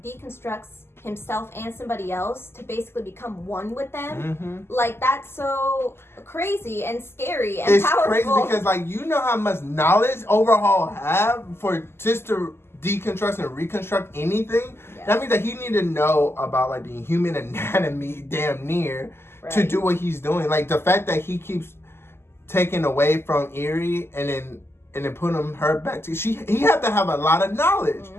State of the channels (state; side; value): late; right; 0.12 ms